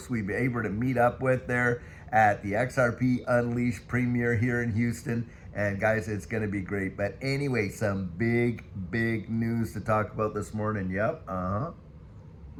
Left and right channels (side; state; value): both; identical; correlation 1.00